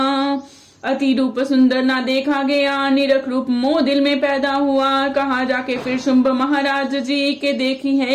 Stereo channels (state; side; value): identical; both; correlation 1.00